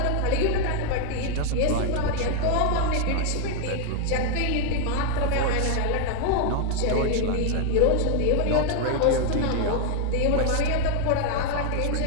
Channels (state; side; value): different; both; correlation 0.00